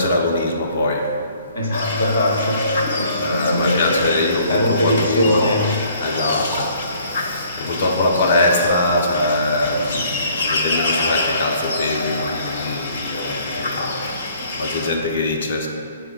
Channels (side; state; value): both; inverted; correlation -0.59